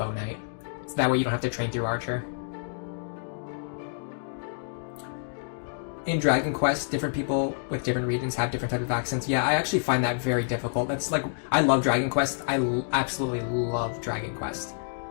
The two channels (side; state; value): right; silent; digital silence